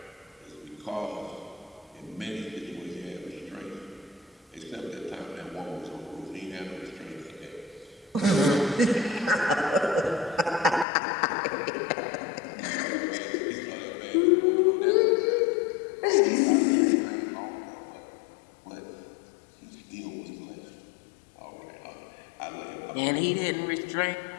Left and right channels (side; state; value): right; drops out; at 10.9 s